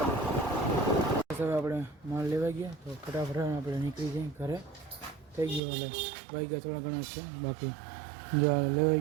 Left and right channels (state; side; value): drops out; left; at 5.6 s